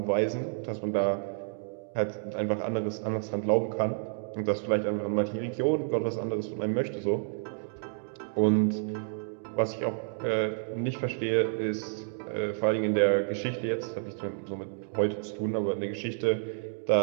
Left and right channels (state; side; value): silent; left; digital silence